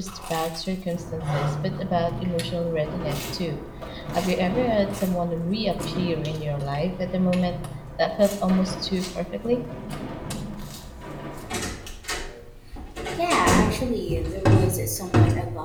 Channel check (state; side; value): identical; both; correlation 1.00